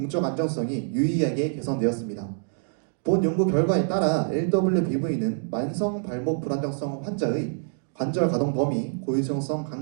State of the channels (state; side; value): silent; left; digital silence